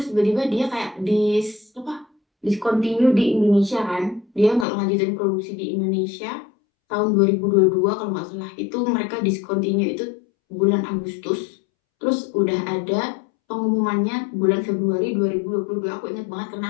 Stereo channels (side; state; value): right; drops out; at 4.7 s